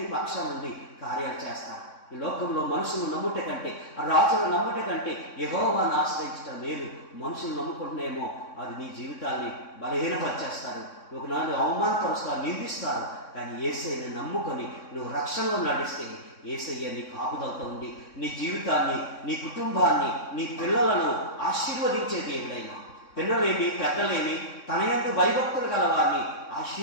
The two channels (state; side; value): late; right; 3.6 ms